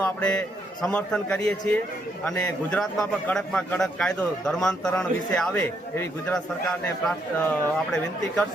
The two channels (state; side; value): normal; both; correlation 0.75